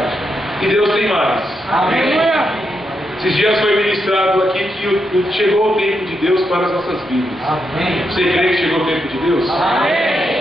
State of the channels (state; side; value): normal; both; correlation 0.83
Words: E Deus tem mais. Amém. Esses dias foi ministrado aqui que chegou o tempo de Deus para as nossas vidas. Amém. Você crê que chegou o tempo de Deus?